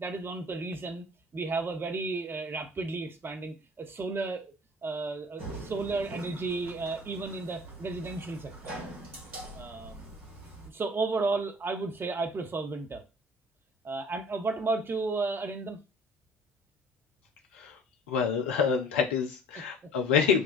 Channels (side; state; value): both; normal; correlation 0.48